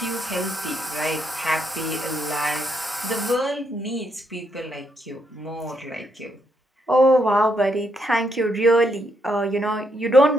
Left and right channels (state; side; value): normal; both; correlation 0.77